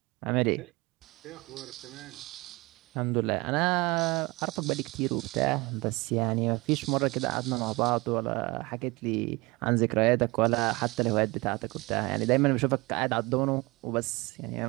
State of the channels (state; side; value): quieter; left; 23.8 dB